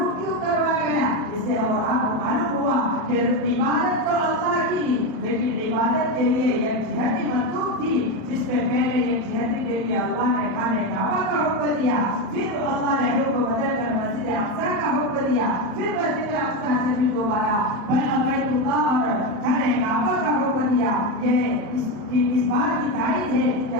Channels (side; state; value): left; late; 27 ms